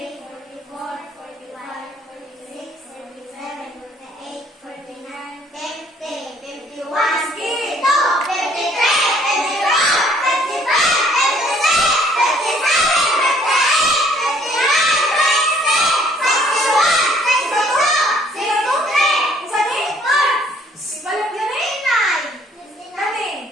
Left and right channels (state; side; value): normal; both; correlation 0.61